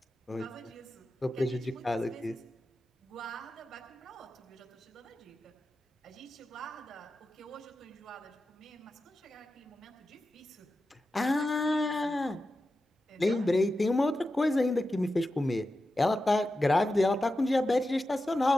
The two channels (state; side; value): normal; both; correlation 0.92